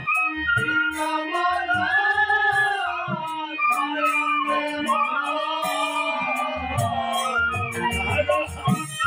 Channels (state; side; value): identical; both; correlation 1.00